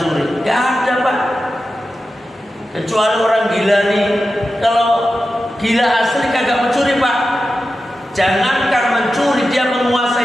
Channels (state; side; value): normal; both; correlation 0.92